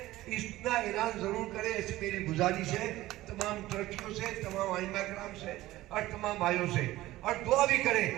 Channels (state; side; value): quieter; left; 16.6 dB